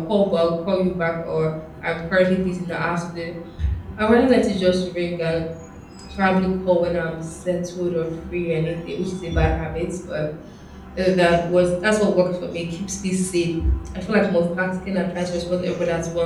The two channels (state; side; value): identical; both; correlation 1.00